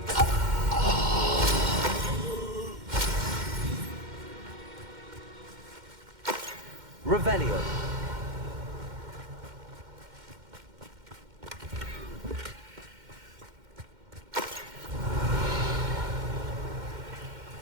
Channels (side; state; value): left; late; 2.1 ms